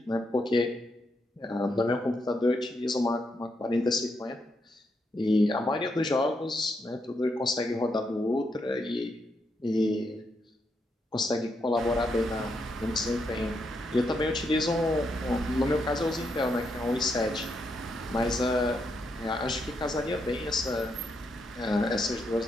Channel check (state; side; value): normal; both; correlation 0.80